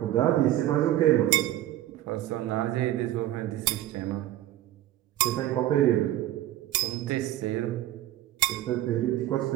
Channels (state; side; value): quieter; left; 14.0 dB